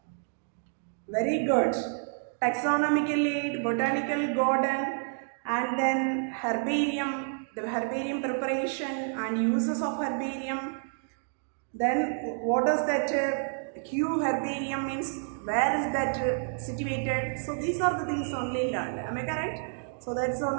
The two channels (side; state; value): left; silent; 58 dB below the other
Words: Very good. Taxonomical aid, botanical garden, and then herbarium, the herbarium preparation and uses of herbarium. Then what does that Q herbarium means? Where is that situated? So these are the things only learned. Am I correct? So that's